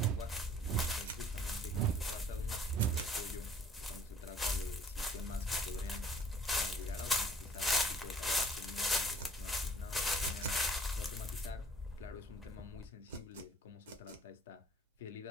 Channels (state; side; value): normal; both; correlation 0.55